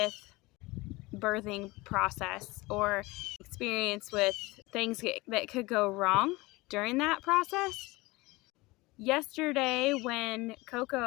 birthing process or experience with things that could go wrong during that process. Yesterday, when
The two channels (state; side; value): quieter; right; 22.1 dB